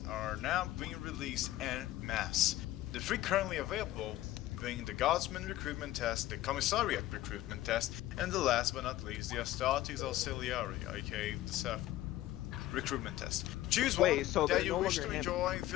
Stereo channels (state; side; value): quieter; right; 15.1 dB